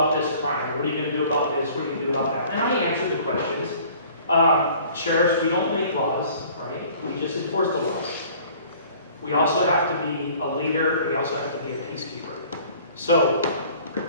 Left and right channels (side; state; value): both; inverted; correlation -0.51